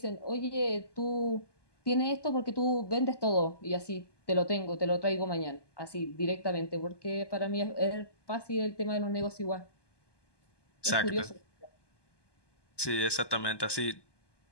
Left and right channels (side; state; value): right; late; 1.2 ms